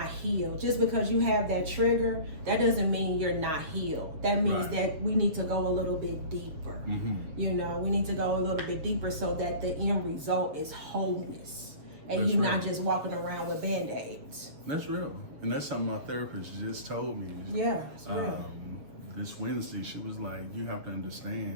healed. Just because you have that trigger, that doesn't mean you're not healed. That means that we need to go a little bit deeper. You know, we need to go a little bit deeper so that the end result is wholeness. And you're not just walking around with Band-Aids. That's real. And that's something my therapist just told me. Yeah, it's real. This Wednesday, she was like, you have to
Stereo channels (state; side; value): late; left; 6.9 ms